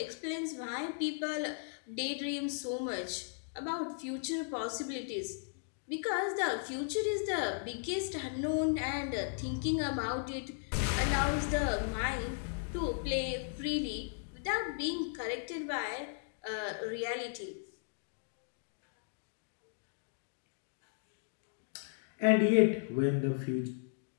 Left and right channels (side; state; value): right; silent; digital silence